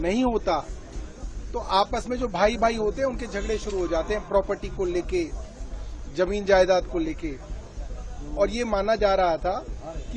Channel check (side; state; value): both; identical; correlation 1.00